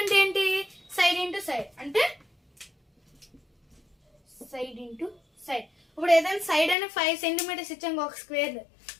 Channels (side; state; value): right; drops out; at 6.8 s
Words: అంటే ఏంటి? సైడ్ ఇంటూ సైడ్ అంటే సైడ్ ఇంటూ సైడ్. ఇప్పుడు ఏదైనా సైడ్ అయినా 5 సెంటీమీటర్స్ ఇచ్చాం ఒక స్క్వేర్.